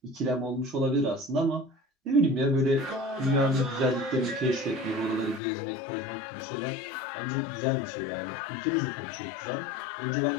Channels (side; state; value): right; drops out; at 5.4 s